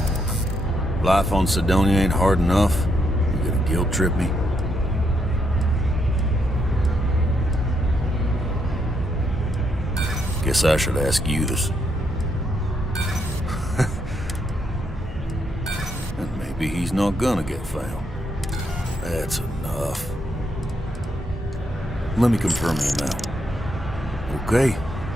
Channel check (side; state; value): both; normal; correlation 0.78